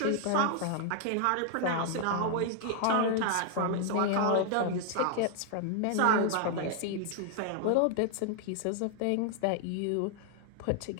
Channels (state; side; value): different; both; correlation 0.00